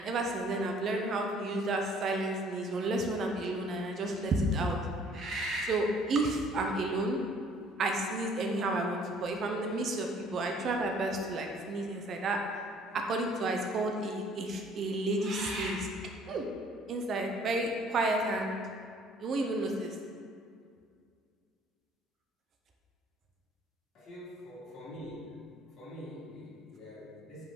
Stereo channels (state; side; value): normal; both; correlation 0.57